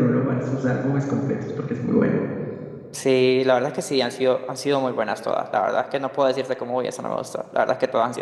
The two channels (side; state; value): both; identical; correlation 1.00